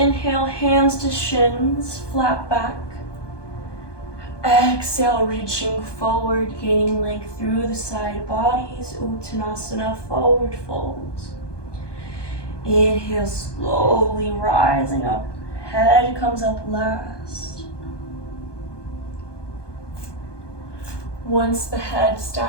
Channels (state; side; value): late; right; 1.2 ms